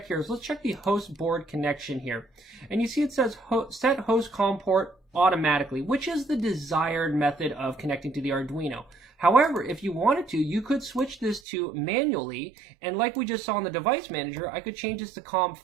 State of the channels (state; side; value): drops out; left; at 11.4 s